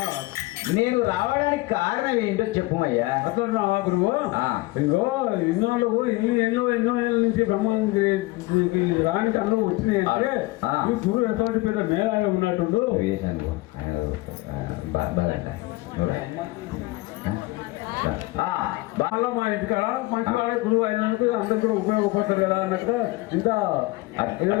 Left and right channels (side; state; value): right; quieter; 21.0 dB